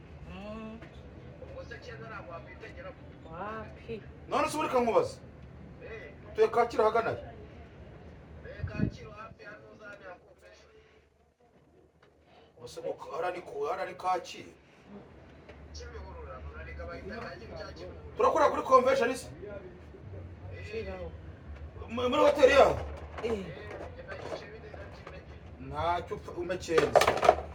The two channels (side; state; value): both; identical; correlation 1.00